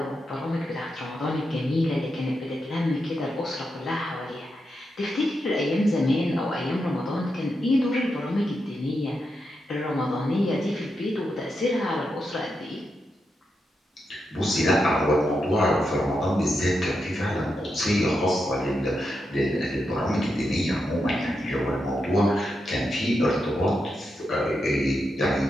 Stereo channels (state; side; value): normal; both; correlation 0.85